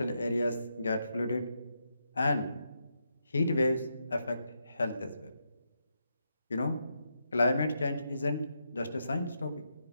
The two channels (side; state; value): both; inverted; correlation -0.82